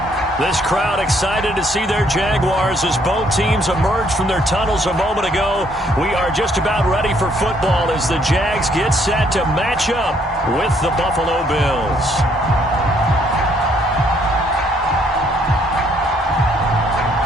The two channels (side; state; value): both; normal; correlation 0.67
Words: This crowd excited to see their Jaguars as both teams emerge from their tunnels a moment ago. We are just about ready for football as the Jags get set to match up with the Buffalo Bills.